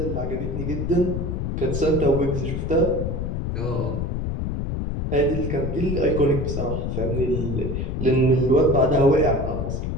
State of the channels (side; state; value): left; noise; rumble, 2 dB below the sound